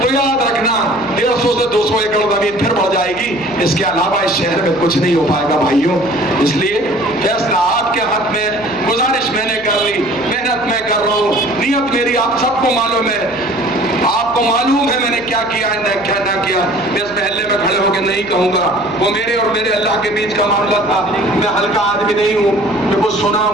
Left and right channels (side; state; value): left; noise; hum, 21 dB below the sound